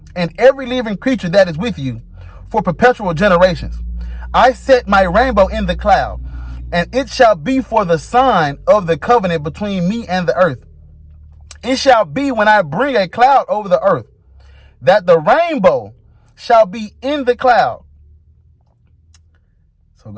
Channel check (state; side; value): identical; both; correlation 1.00